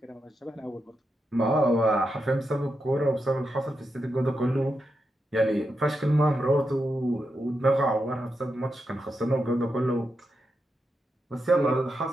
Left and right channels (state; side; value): normal; both; correlation 0.86